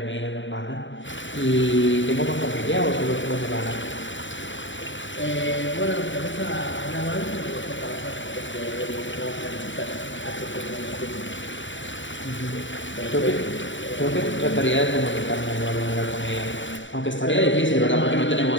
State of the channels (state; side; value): late; right; 0.55 ms